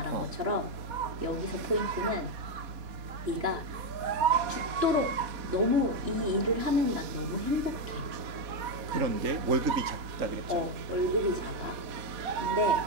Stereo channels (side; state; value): left; late; 3.5 ms